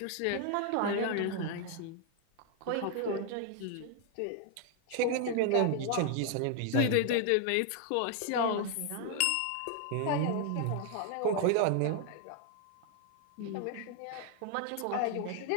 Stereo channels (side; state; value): both; different; correlation 0.00